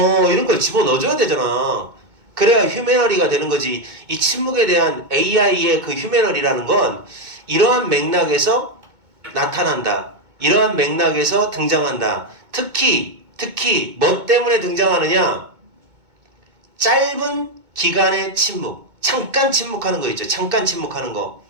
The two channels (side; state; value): left; late; 2.2 ms